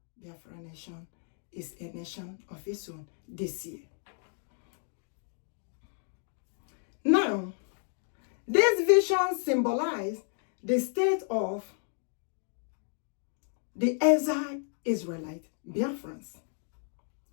Biafra nation is a nation of its own this year. Now, this vision symbolizes the state of the exiled Israelite Biafrans,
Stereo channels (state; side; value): silent; right; 56 dB below the other